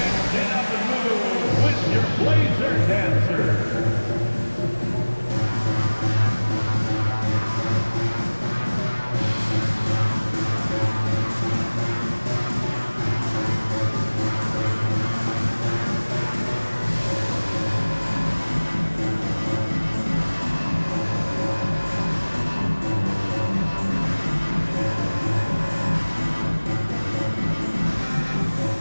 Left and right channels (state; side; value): inverted; both; correlation -1.00